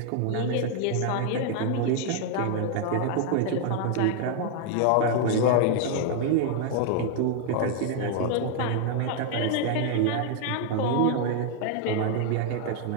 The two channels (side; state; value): both; different; correlation 0.00